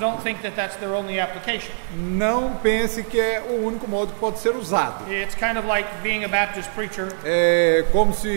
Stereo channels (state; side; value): silent; left; digital silence